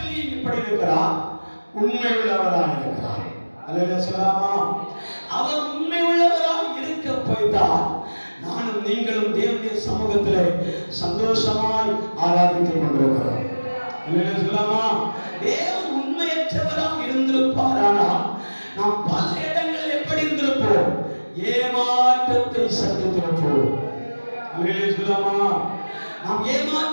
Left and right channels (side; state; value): both; inverted; correlation -1.00